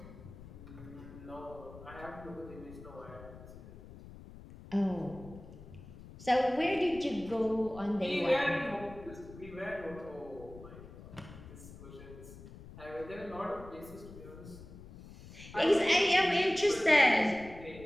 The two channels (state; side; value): noise; left; rumble, 16 dB below the sound